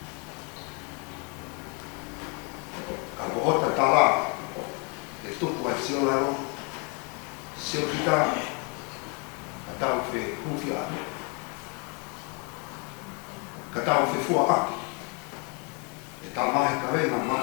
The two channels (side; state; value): right; quieter; 34.4 dB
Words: Ka pohota tala. E tupu ai sio laro. Sio kita. Ka tau whe hufia. Ka tau whe fua aki. E tā mahi ka renga